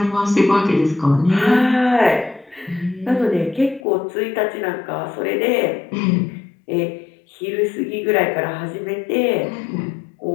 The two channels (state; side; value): drops out; right; at 3.9 s